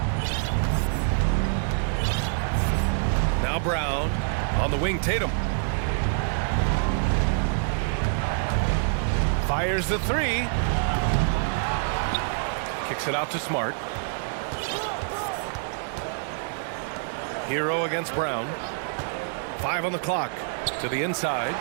Now Brown on the wing. Tatum fires the three. Kicks it out to Smart. Hero against Brown. 5 on the clock. To the inside.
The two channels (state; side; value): silent; left; digital silence